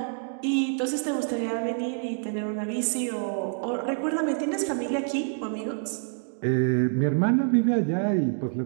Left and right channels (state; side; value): silent; left; digital silence